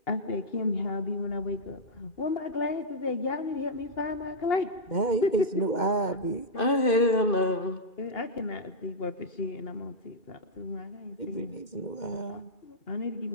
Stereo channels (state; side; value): late; right; 2.1 ms